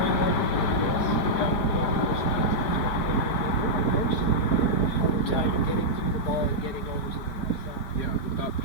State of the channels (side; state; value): right; late; 4.8 ms